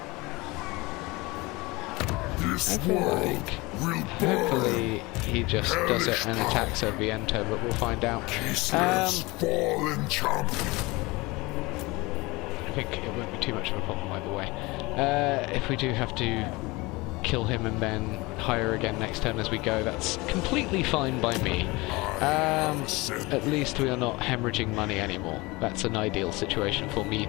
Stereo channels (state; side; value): quieter; right; 23.2 dB